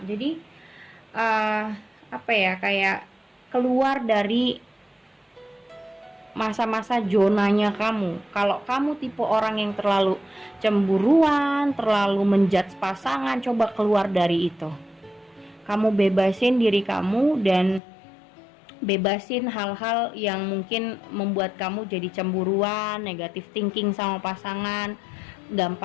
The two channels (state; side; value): drops out; right; at 17.8 s